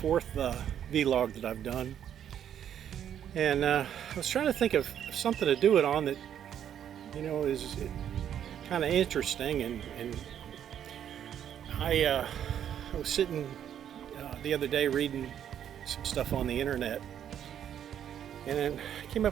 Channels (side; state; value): left; quieter; 9.6 dB